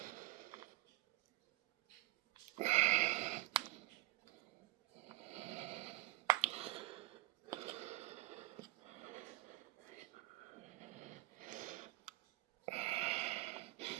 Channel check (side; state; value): left; quieter; 17.2 dB